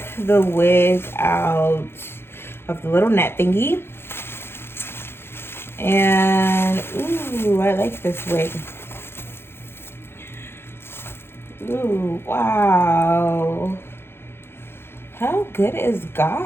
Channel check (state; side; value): late; right; 0.11 ms